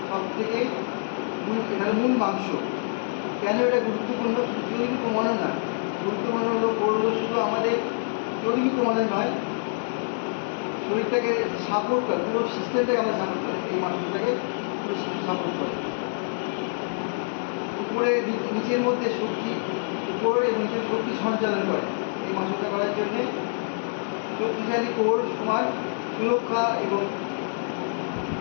সব থেকে এটা মূল মাংস। কেন এটা গুরুত্বপূর্ণ? শুধু শরীর কমানো না, গুরুত্বপূর্ণ হলো কোর হলো শুধু আমাদের চর্বি কমানো নয়, শরীরটাকে সাপোর্ট করে, পুরো সিস্টেমটাকে আমরা সাপোর্ট করে, এই মাসুলটাকে পুরো সাপোর্ট করে। উপরে নিচের মধ্যে শক্তি, উপরে এবং নিচের শক্তি সঞ্চালন করে। এই মাসুলটা করার জন্যে শক্তিশালী কোর সমান সুরক্ষা এবং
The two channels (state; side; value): silent; right; digital silence